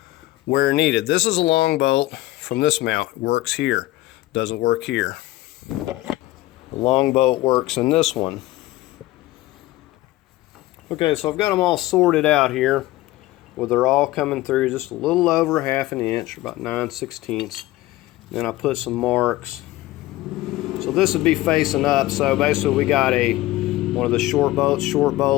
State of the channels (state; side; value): quieter; right; 17.5 dB